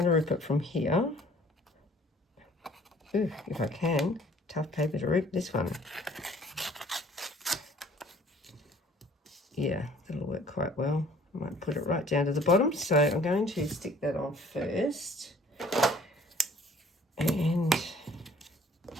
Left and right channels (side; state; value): both; normal; correlation 0.55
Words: to rip it from here. Ooh, if I can. Tough paper to rip, this one. Yeah, that'll work quite well. I might put it right down to the bottom. So I'm going to stick that on first. And